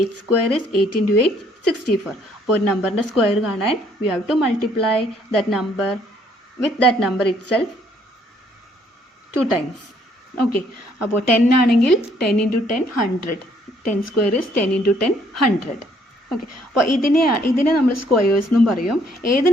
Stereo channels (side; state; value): both; normal; correlation 0.65